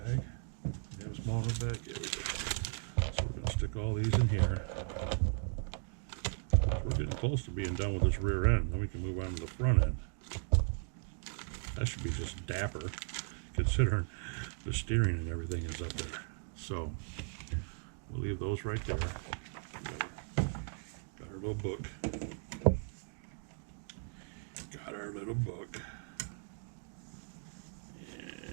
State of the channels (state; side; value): silent; left; 53 dB below the other